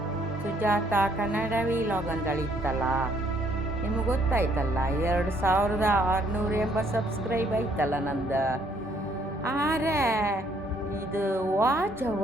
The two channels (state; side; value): normal; both; correlation 0.66